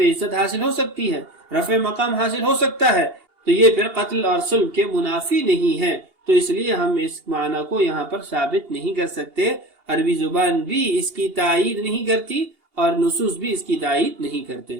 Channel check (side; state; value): left; late; 2.8 ms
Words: عزت حاصل ہو سکتی ہے، رفع مقام حاصل ہو سکتا ہے، تو یہ پھر قتل اور صلب کے منافی نہیں ہے، تو اس لیے ہم اس معنی کو یہاں پر ثابت نہیں کر سکتے۔ عربی زبان بھی اس کی تائید نہیں کرتی اور نصوص بھی اس کی تائید نہیں کرتے۔